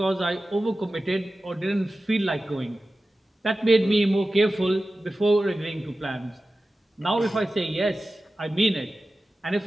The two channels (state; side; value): normal; both; correlation 0.95